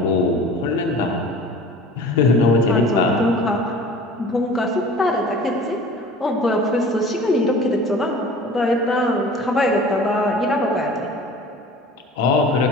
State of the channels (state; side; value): normal; both; correlation 0.43